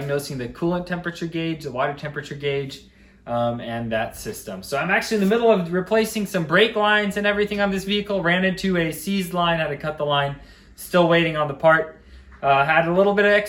the coolant temperature gauge, the water temperature gauge, and that system. So I'm actually in the middle of replacing some brake lines and everything on this vehicle. Ran into a seized line, had to cut the line. Still waiting on the part. Had a little bit of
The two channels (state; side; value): identical; both; correlation 1.00